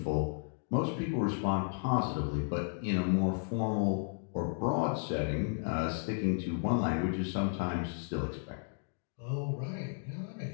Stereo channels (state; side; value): silent; right; 55 dB below the other